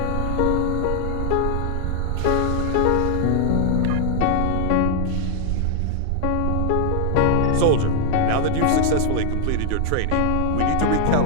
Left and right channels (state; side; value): different; both; correlation 0.00